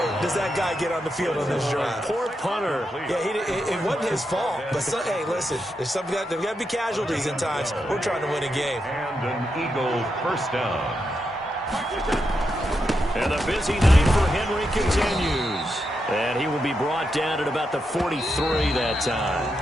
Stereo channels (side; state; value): both; normal; correlation 0.85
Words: does that guy get on the field on this drive. Poor punter. Yeah, it wasn't his fault. But, hey, listen, there's got to be casualties at times. We're trying to win a game. And an Eagle first down. And the busy night for Henry continues. And he will be brought down at about the 43 that